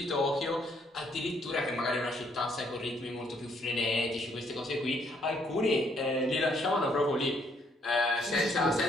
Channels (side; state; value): both; normal; correlation 0.69